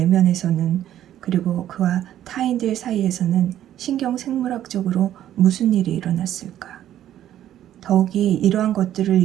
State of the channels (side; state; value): left; quieter; 11.8 dB